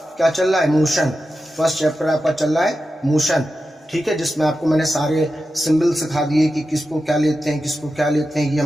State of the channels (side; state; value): both; normal; correlation 0.91